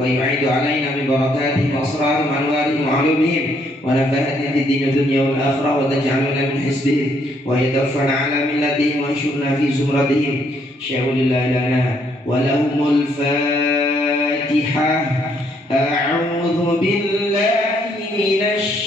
yu'idu alaina min barakatihim wa asrarihim wa anwarihim wa ulumihim wa nafahatihim fid din dunya wal akhirah wa taj'aluna min hisbihim wa yadfa'na ala millatihim wa yashurna fi zumratihim sya'ulillahi lana wa lahumul fatihah. A'udhu billahi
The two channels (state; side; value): normal; both; correlation 0.70